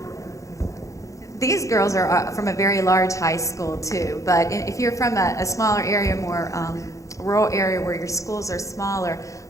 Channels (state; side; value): late; right; 0.15 ms